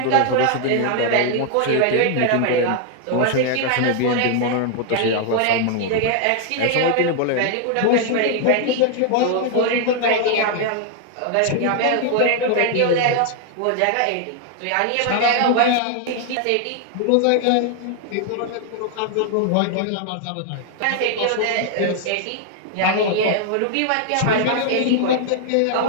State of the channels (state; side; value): different; both; correlation 0.00